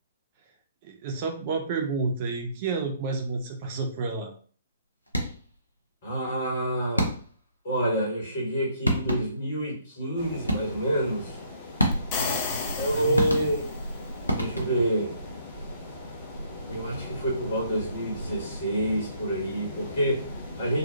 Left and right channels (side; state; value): both; inverted; correlation -0.65